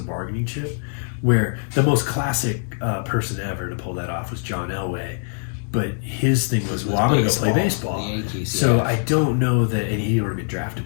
bargaining chip. Where the most classic person ever to pull that off was John Elway, but his thing was, well, I'm going to go play baseball. The Yankees, So yeah. I don't know that, and he already been drafted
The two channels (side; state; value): right; silent; digital silence